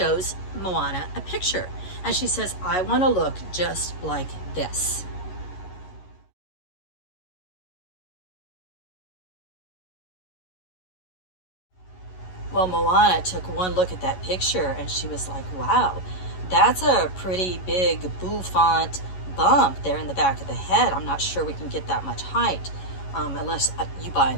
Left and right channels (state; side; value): late; right; 11 ms